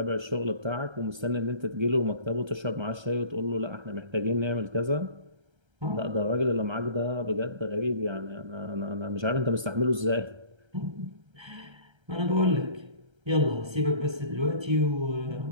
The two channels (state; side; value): late; left; 1.3 ms